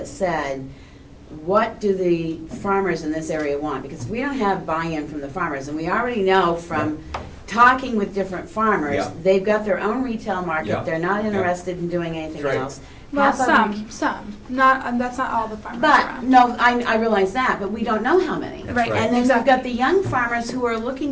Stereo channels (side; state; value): both; identical; correlation 1.00